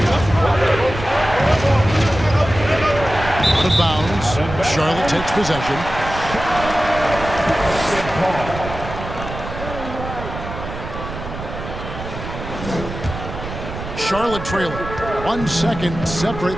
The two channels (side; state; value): right; noise; rumble, 9 dB below the sound